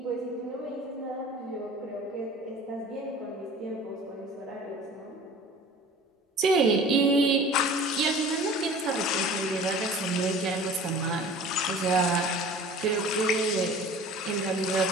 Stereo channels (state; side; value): normal; both; correlation 0.43